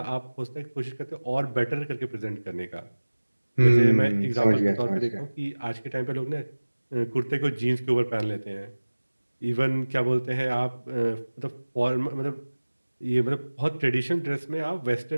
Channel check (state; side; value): inverted; both; correlation -1.00